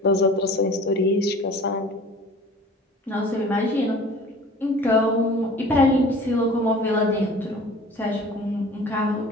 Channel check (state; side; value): normal; both; correlation 0.44